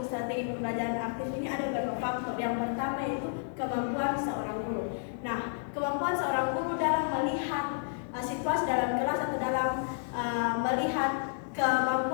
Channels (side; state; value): right; silent; digital silence